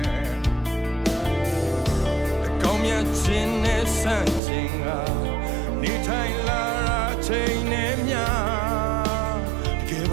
အကောင်းမြတ်ခြင်းနဲ့ဆန့်ကျင်ကနေထိုင်လာတာချိန်နဲ့များတကယ်ပ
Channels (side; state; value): left; drops out; at 4.4 s